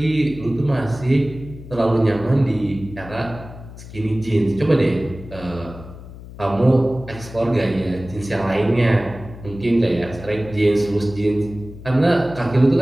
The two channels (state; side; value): noise; left; hum, 15 dB below the sound